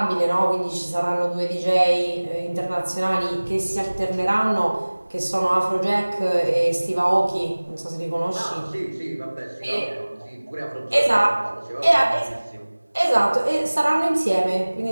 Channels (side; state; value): both; inverted; correlation -1.00